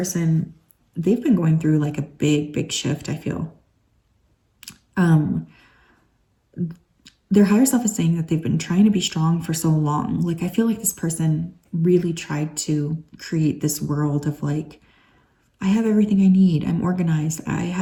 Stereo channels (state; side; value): identical; both; correlation 1.00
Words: they've been going through like a big shift, I feel. Their higher self is saying that they've been trying to be strong for so long. Like, I feel like this person really tried to create this world of like, I have everything I need. I'm organized. I